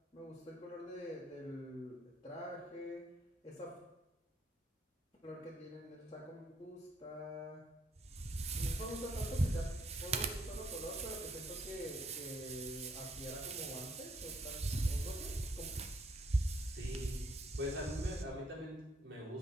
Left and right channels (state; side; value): normal; both; correlation 0.70